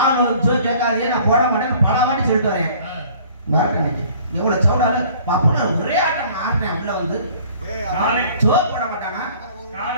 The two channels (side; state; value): both; inverted; correlation -0.52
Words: வந்து கேட்காதே நான் போட மாட்டேன் பல வாட்டி சொல்லிட்டு வரேன். பாருங்க இன்னைக்கு எவ்வளவு சவுடால பாப்பா ஒரே ஆட்டம் ஆடுறேன். உள்ள வந்து சோறு போட மாட்டானா?